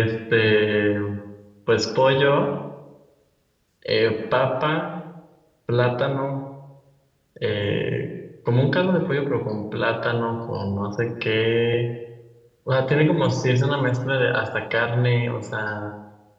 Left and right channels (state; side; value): identical; both; correlation 1.00